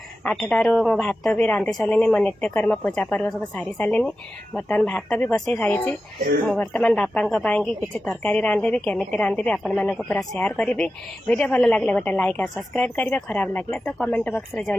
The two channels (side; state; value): both; normal; correlation 0.93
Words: 8टारू मो भात भी रांधि सारे मो नित्यकर्म पूजा पर्व सब सारी सारे बर्तमान भात भी बसई सारी मु बर्तमान बापा किसी तरकारी रांधि केमिति रांधि आपण मानक पूरा शेयर करी। वीडियो भल लगे गोटे लाइक और सब्सक्राइब करेंगे, खराब लगे तो कमेंट बॉक्स रे